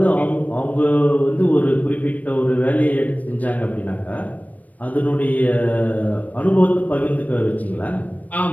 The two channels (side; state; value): right; late; 0.072 ms